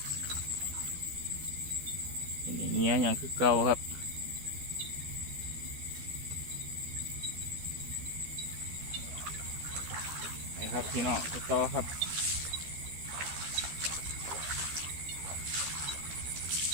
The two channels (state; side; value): late; left; 13 ms